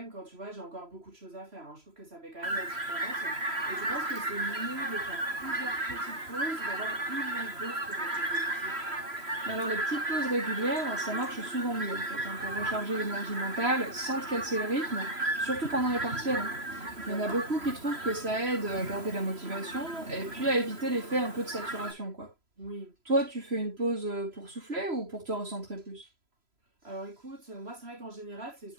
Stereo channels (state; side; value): late; left; 3.0 ms